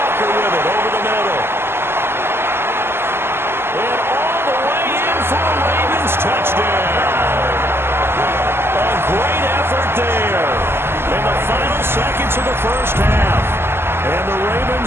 with it over the middle. And all the way in for a Ravens touchdown. A great effort there in the final seconds of the first half. And the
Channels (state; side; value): late; left; 0.12 ms